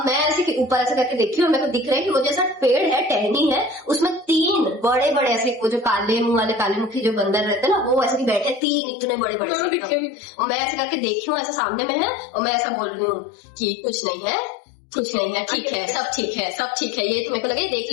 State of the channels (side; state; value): right; drops out; at 8.6 s